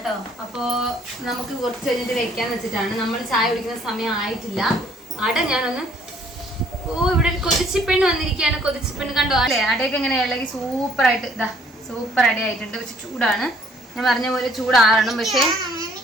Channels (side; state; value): both; normal; correlation 0.61